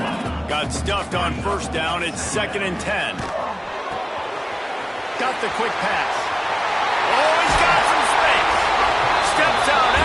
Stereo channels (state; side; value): identical; both; correlation 1.00